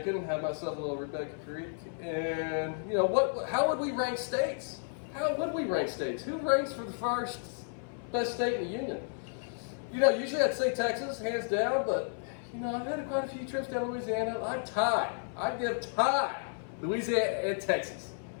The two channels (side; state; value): right; silent; 56 dB below the other